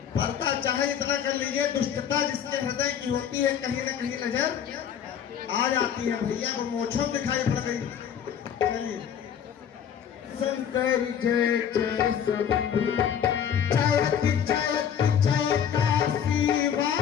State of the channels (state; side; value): quieter; right; 8.6 dB